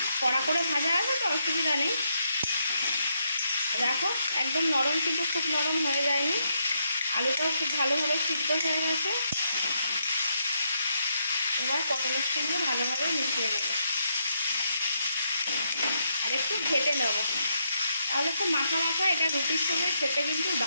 কড়া করে ভাজা আছে তো অসুবিধা নেই। দেখো একদম নরম, কিন্তু খুব নরম হয়ে যায়নি, আলুটাও খুব ভালোভাবে সিদ্ধ হয়ে গেছে। এবার পটলের সঙ্গে ভালোভাবে মিশিয়ে নেব আর একটু ঘেটে নেব, তাহলে খুব মাখা মাখা এটা রুটির সঙ্গে খেতে কিন্তু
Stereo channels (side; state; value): both; inverted; correlation -0.78